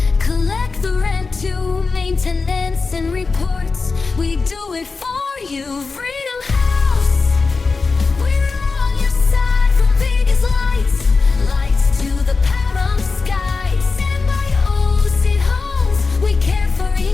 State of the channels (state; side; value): quieter; right; 4.3 dB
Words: collect the rent to maintenance and reports. We do it for you, Freedom House. We're on your side from Vegas lights, lights to the Pahrump skies. Stand by ocean homes, we care for